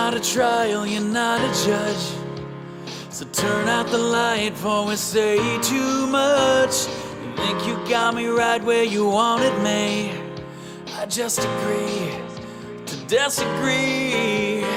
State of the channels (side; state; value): both; identical; correlation 1.00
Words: a trial, you're not a judge. So turn out the light before we say too much. You think you got me right where you wanted me. I just agree to disagree.